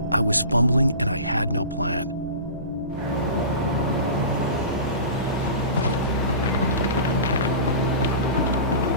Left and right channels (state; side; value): inverted; both; correlation -0.34